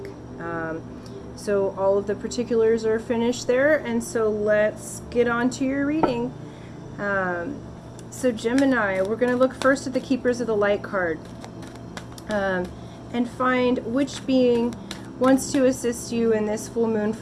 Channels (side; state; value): both; identical; correlation 1.00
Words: So all of the particulars are finished there, and so let's get on to your reading. So Gemini, we're going to look first at the Keepers of the Light card and find which being wants to assist you in this full moon